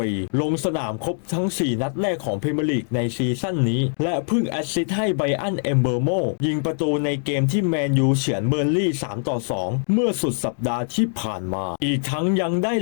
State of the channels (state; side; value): silent; right; digital silence